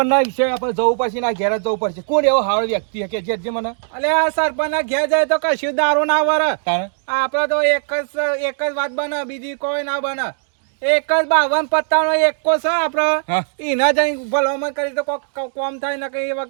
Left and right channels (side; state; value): left; silent; 67 dB below the other